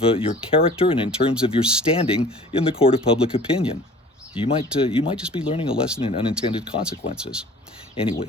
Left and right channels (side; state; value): both; normal; correlation 0.47